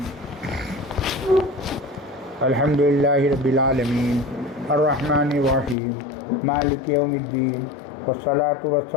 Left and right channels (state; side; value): drops out; right; at 5.8 s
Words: الحمد للہ رب العالمین الرحمن الرحیم مالک یوم الدین والصلاة